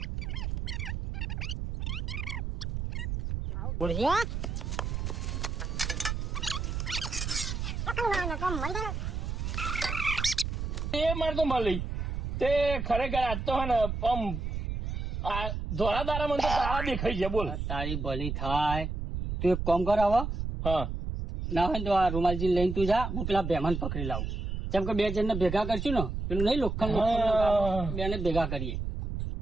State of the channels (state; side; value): noise; right; rumble, 3 dB below the sound